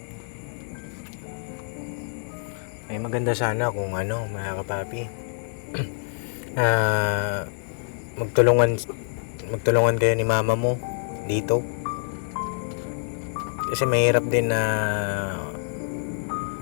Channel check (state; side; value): silent; right; digital silence